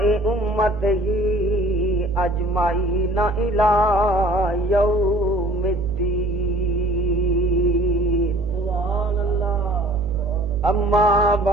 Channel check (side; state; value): right; noise; hum, 13 dB below the sound